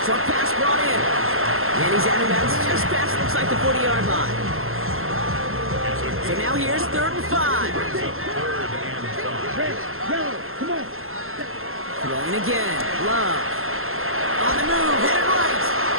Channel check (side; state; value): left; late; 0.61 ms